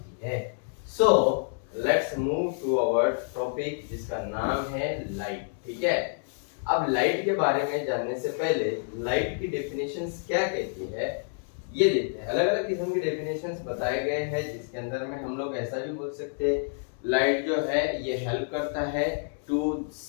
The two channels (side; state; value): right; silent; digital silence